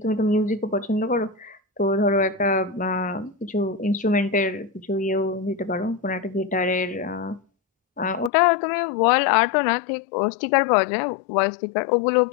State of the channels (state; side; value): drops out; right; at 8.3 s